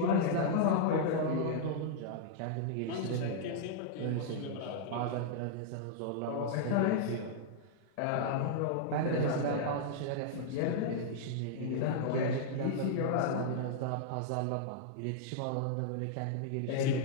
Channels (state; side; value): different; both; correlation -0.01